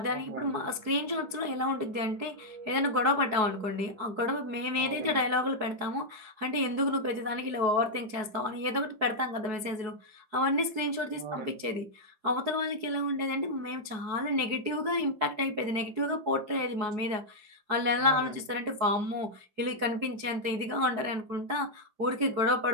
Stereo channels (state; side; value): late; left; 4.7 ms